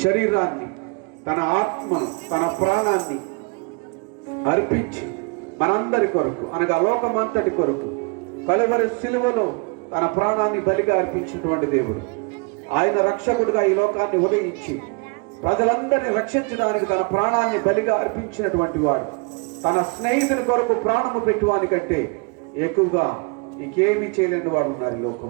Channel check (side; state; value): left; quieter; 32.4 dB